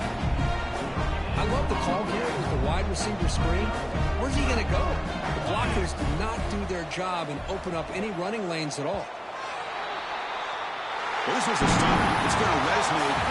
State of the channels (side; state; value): both; identical; correlation 1.00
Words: I love the call here with the wide receiver screen. Where's he going to go? The blockers do not do their job and open up any running lanes at all. Well, this was a stunt. It's going to resonate